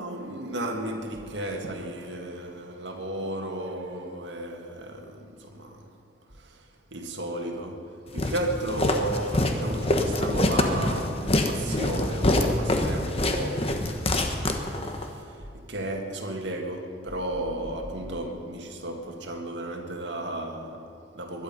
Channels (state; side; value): normal; both; correlation 0.42